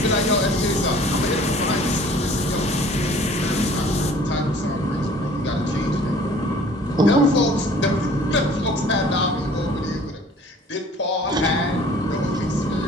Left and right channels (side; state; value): both; normal; correlation 0.51